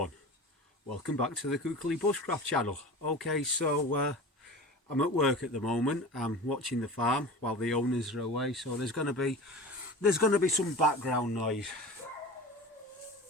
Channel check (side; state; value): both; normal; correlation 0.34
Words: welcome back to the Cookly Bushcraft channel. Okay, so I'm at work at the moment. I'm watching the farm while the owners are away, so there's going to be some background noise